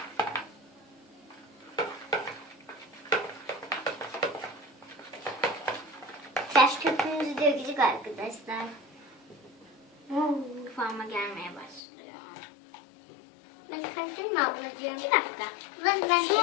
Taş köpüğümüzü dökecek arkadaşlar. Kıvama gelmeye başlıyor. Ben karıştırayım mı ablacığım? Bir dakika. Ben Şu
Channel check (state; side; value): drops out; right; at 11.8 s